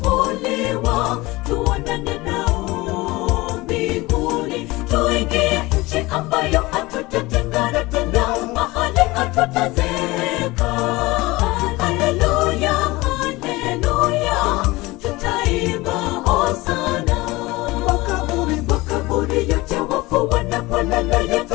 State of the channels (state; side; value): quieter; right; 21.2 dB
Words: Tuonane nao mbinguni, tuingie nchi ambayo hatutatengana tena, mahali hatutazeka. Haleluya, haleluya, tutaimba hosana. Makaburi yote wafu wanapolala